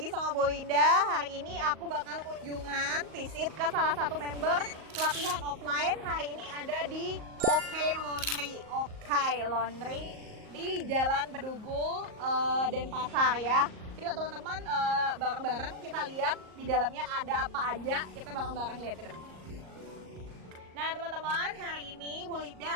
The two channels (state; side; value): late; left; 38 ms